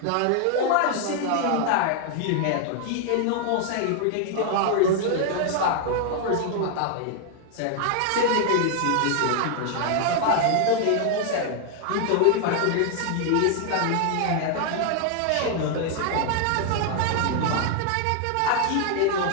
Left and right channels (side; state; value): both; different; correlation 0.00